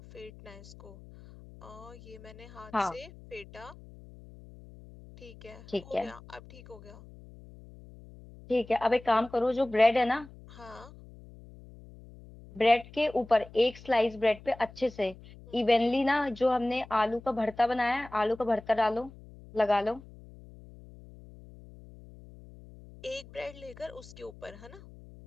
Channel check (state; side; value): noise; left; hum, 19 dB below the sound